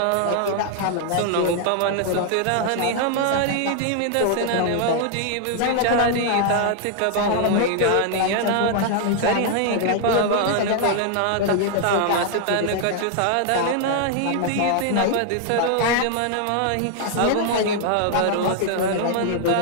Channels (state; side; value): different; both; correlation 0.00